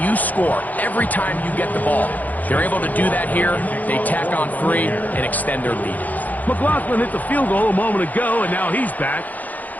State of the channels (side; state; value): right; late; 0.081 ms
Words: you score every time you get the ball? They're able to do that here. They tack on 3 and extend their lead. McLaughlin hit the field goal a moment ago, and now he's back